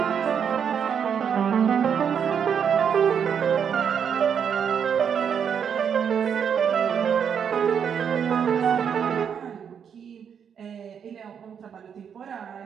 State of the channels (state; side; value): quieter; left; 7.6 dB